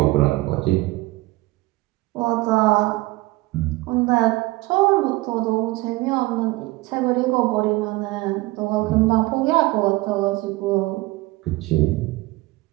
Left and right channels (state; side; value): quieter; left; 20.8 dB